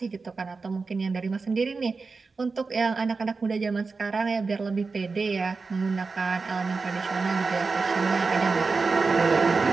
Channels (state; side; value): quieter; left; 4.3 dB